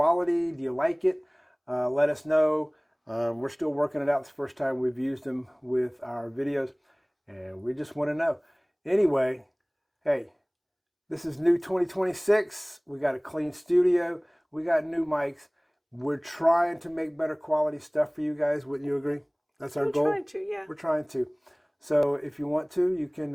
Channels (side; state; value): both; identical; correlation 1.00